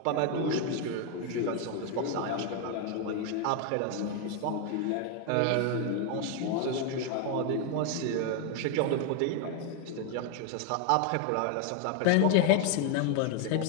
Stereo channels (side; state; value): both; different; correlation 0.01